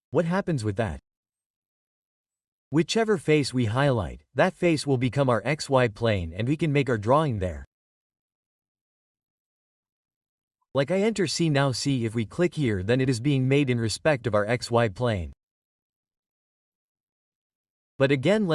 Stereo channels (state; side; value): identical; both; correlation 1.00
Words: What happens with that? Whichever face we highlight, that face will become our xy plane and we can make our drawing there. Like I enter C now, see if we click here, then it is being made in respect of our xy plane. But again